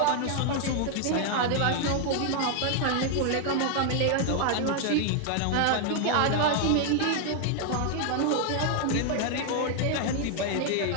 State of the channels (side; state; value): both; different; correlation 0.00